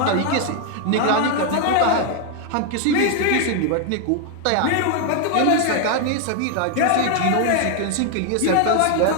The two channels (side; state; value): both; different; correlation 0.00